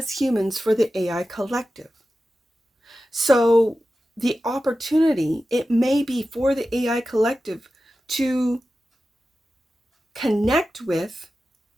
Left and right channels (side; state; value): both; normal; correlation 0.93